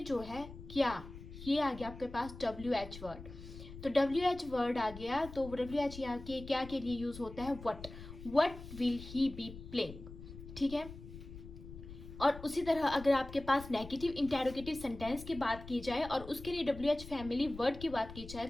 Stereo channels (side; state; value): left; noise; rumble, 13 dB below the sound